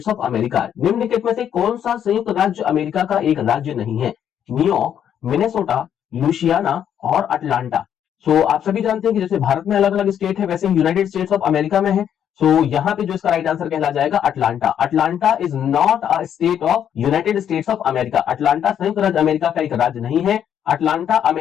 of America? निम्नलिखित में से कौन सा संयुक्त राज्य अमेरिका का एक राज्य नहीं है? न्यूयॉर्क, मिनेसोटा, लुइसियाना और अटलांटा। सो आप सभी जानते हैं कि जैसे भारत में अलग अलग स्टेट है वैसे यूनाइटेड स्टेट्स ऑफ अमेरिका में है। सो यहां पे जो इसका राइट आंसर कहला जाएगा Atlanta. Atlanta is not a state of United states of America. Atlanta संयुक्त राज्य अमेरिका का एक राज्य नहीं है। अटलांटा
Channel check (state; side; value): quieter; right; 9.3 dB